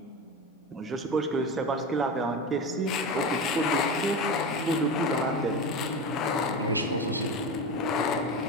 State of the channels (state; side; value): normal; both; correlation 0.24